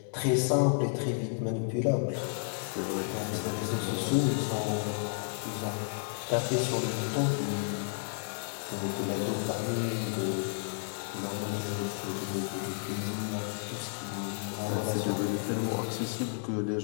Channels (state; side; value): silent; right; digital silence